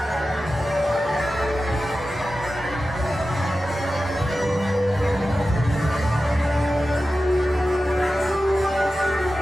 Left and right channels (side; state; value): both; normal; correlation 0.94